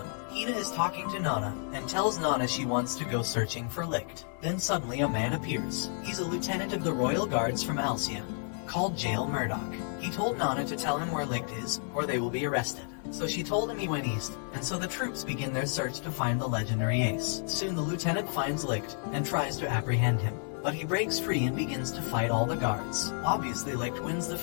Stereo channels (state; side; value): silent; right; 57 dB below the other